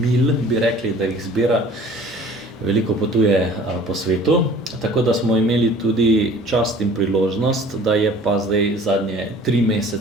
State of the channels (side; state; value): both; normal; correlation 0.48